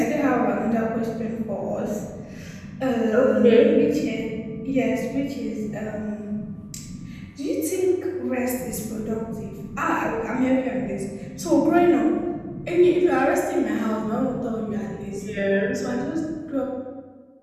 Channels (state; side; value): identical; both; correlation 1.00